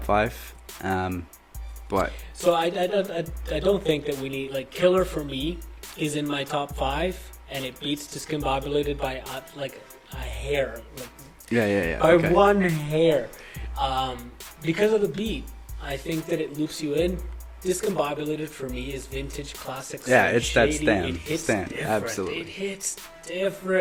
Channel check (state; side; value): identical; both; correlation 1.00